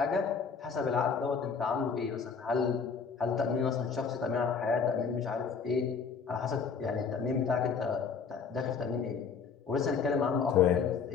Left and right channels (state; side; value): quieter; right; 5.8 dB